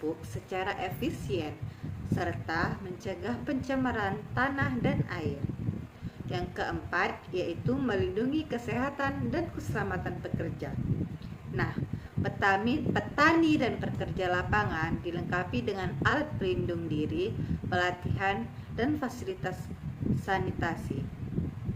secara efisien, serta mencegah pencemaran tanah dan air. Yang keempat yaitu melindungi kesehatan dan keselamatan pekerja. Nah, petani dan pekerja lapangan dilengkapi dengan alat pelindung diri, pelatihan, dan fasilitas sanitasi.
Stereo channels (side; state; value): both; identical; correlation 1.00